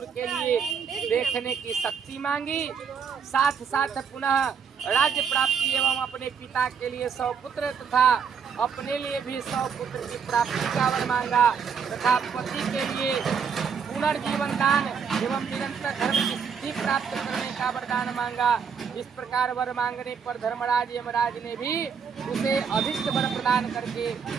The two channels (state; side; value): quieter; left; 6.6 dB